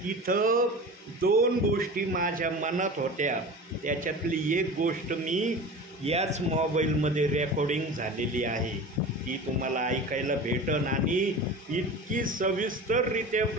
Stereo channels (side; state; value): both; normal; correlation 0.34